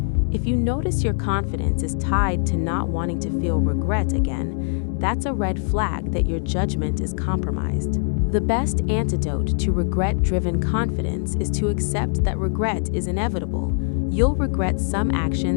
If you notice your confidence is tied to not wanting to feel regret again, that's a red flag that your judgment is compromised. The best antidote to regret-driven confidence is to accept that regret is inevitable. You'll regret some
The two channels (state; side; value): silent; right; digital silence